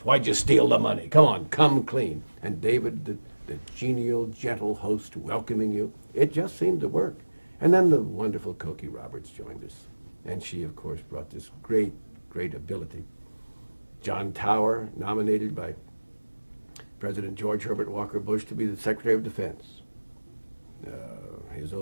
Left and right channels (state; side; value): inverted; both; correlation -1.00